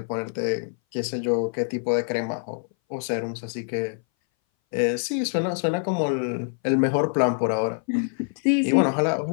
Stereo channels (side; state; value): right; silent; 59 dB below the other